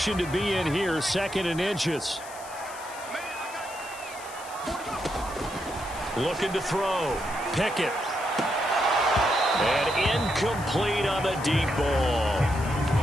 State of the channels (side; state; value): left; noise; hiss, 16 dB below the sound